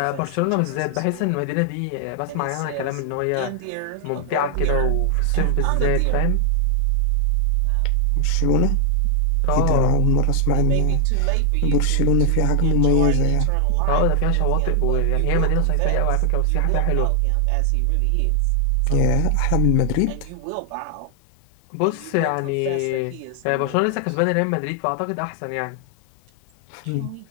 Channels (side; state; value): both; different; correlation 0.00